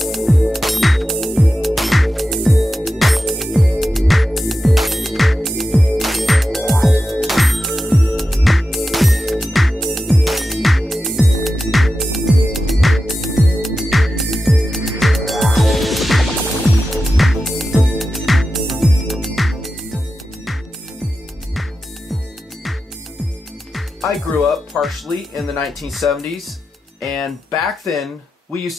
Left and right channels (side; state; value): both; normal; correlation 0.91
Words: I grew up partially in the 1970s, and back then we used